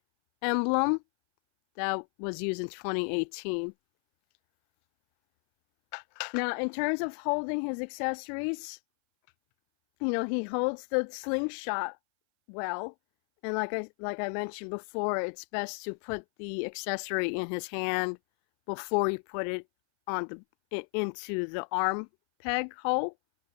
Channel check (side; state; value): right; silent; 56 dB below the other